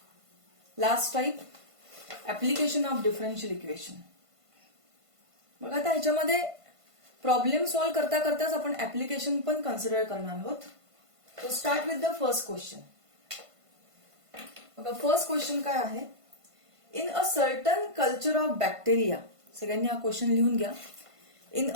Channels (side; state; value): left; late; 1.5 ms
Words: last type application of differential equation. मग आता ह्याच्यामध्ये प्रॉब्लेम सॉल्व्ह करता करताच आपण ऍप्लिकेशन पण कन्सिडर करणार आहोत. To start with the first question. बघा फर्स्ट क्वेश्चन काय आहे. In a certain culture of bacteria, सगळ्यांनी हा क्वेश्चन लिहून घ्या. In